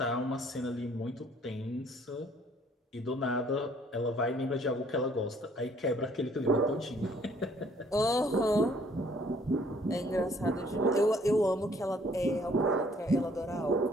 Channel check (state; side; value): normal; both; correlation 0.61